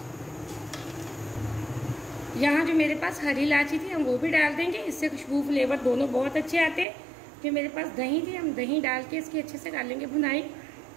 यहाँ जो मेरे पास हरी इलायची थी हम वो भी डाल देंगे, इससे खुशबू फ्लेवर दोनों बहुत अच्छे आते हैं। जो मेरे पास दही थी हम दही डाल के इसकी अच्छे से डालेंगे भुनाई।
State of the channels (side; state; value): left; drops out; at 6.9 s